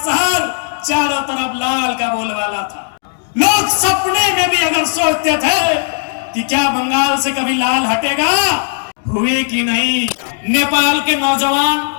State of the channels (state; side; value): silent; right; 69 dB below the other